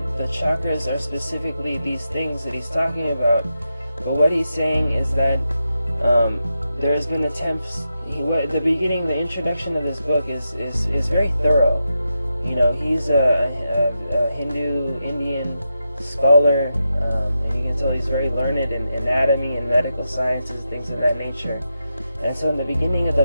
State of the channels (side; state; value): both; inverted; correlation -0.88